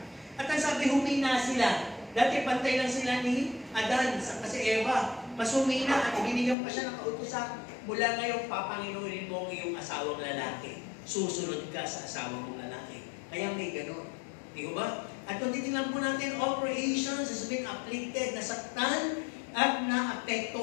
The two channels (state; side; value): drops out; right; at 6.6 s